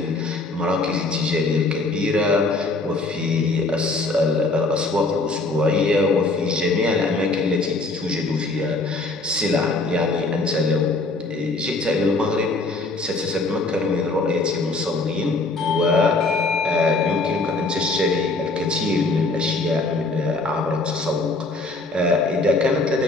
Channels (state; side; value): quieter; right; 3.3 dB